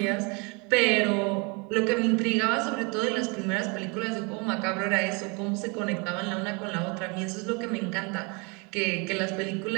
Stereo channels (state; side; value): quieter; left; 30.9 dB